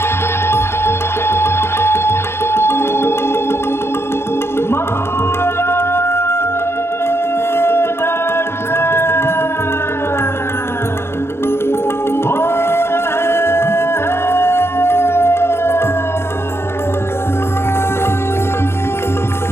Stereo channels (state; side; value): late; right; 0.12 ms